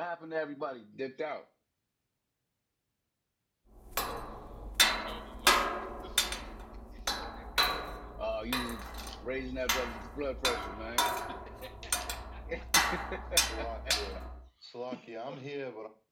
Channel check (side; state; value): both; identical; correlation 1.00